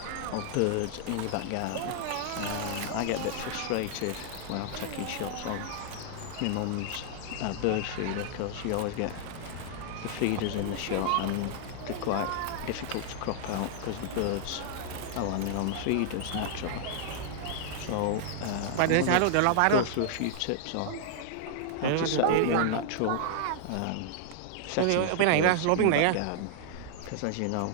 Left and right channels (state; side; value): different; both; correlation -0.01